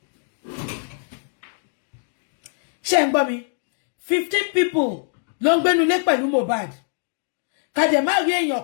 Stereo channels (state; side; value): silent; right; digital silence